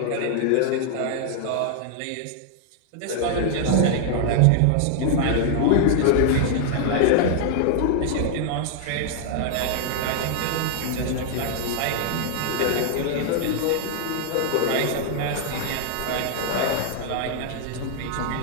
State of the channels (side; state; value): both; different; correlation 0.00